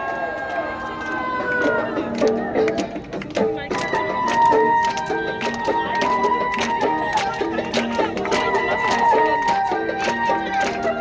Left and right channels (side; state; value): both; identical; correlation 1.00